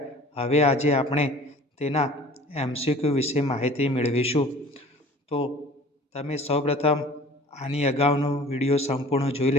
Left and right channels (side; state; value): both; normal; correlation 0.47